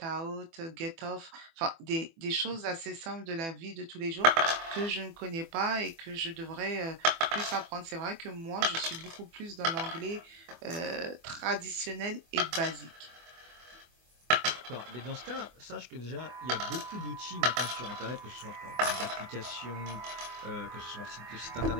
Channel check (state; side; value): late; left; 24 ms